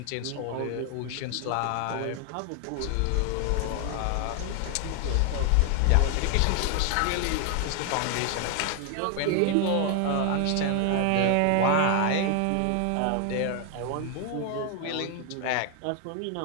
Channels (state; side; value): different; both; correlation 0.00